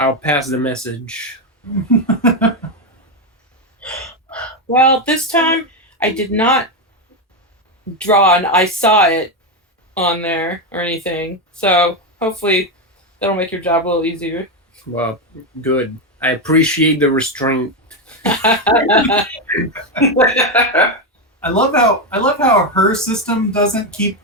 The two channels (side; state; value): both; normal; correlation 0.08